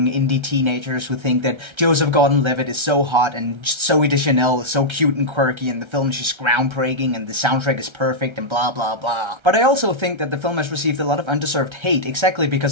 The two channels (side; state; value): left; late; 1.3 ms